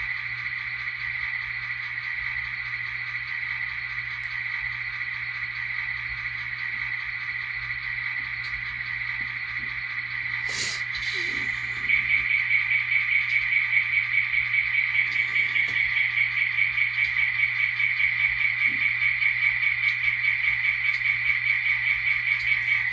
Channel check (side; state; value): left; quieter; 3.2 dB